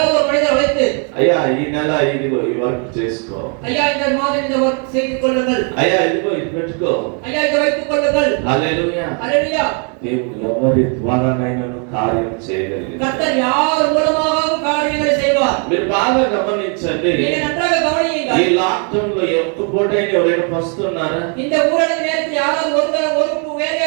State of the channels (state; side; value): quieter; left; 39.4 dB